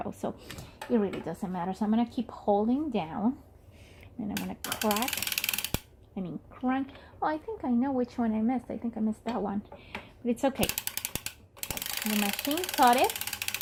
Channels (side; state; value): both; identical; correlation 1.00